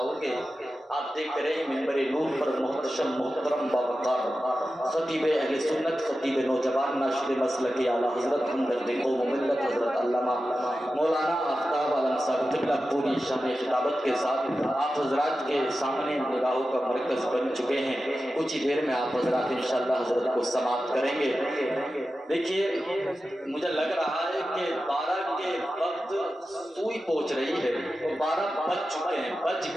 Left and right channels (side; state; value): both; normal; correlation 0.92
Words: گے. آپ دیکھ رہے ہیں منبر نور پر محتشم محترم باوقار خطیب اہل سنت، خطیب نوجوان، ناشر مسلک اعلیٰ حضرت ہمدرد قوم و ملت حضرت علامہ مولانا آفتاب عالم صاحب قبلہ پوری شان خطابت کے ساتھ آپ حضرات کے سامنے نگاہوں کا مرکز بن چکے ہیں. کچھ ہی دیر میں آپ حضرات انشاءاللہ حضرت کو سماعت کریں گے. دیکھیے مجھے لگ رہا ہے کہ 12 کے وقت سوئی پہنچ رہی ہے اور 12 بج چکے ہیں، بج